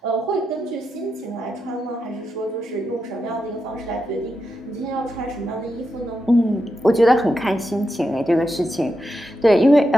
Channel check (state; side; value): normal; both; correlation 0.86